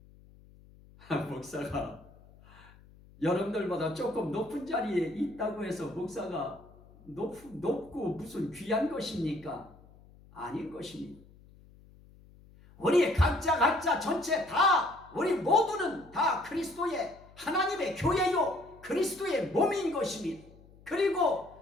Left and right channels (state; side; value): noise; left; hum, 24 dB below the sound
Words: 목사가 여러분들보다 조금 높은 자리에 있다고 해서 목사가 높고 무슨 귀한 것입니까? 아닌 것입니다. 우리 각자 전체 다 우리 모두는 다 그리스도의 하나님의 교회요 그리스도의 몸인 것입니다. 그리고